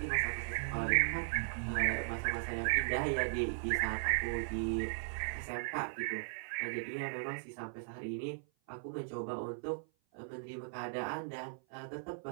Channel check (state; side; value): silent; left; 53 dB below the other